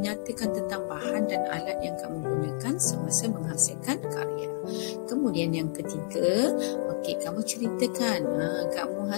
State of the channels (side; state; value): right; silent; digital silence